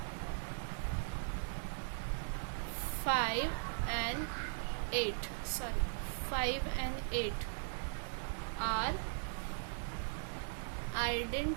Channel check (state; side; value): silent; left; 52 dB below the other